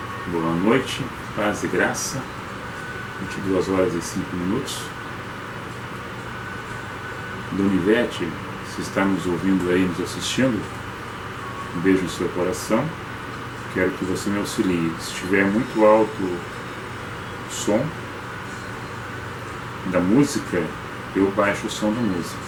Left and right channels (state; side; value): identical; both; correlation 1.00